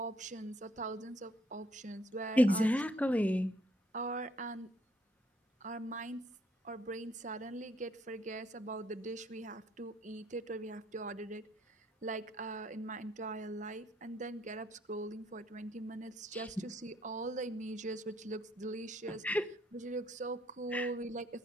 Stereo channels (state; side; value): normal; both; correlation 0.68